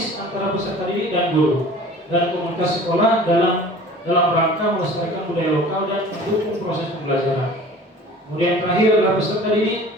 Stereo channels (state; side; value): normal; both; correlation 0.44